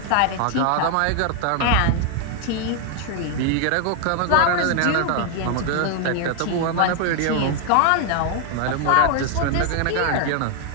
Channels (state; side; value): different; both; correlation 0.00